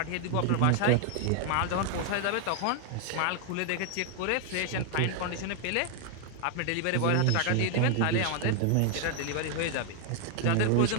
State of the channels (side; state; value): both; different; correlation 0.00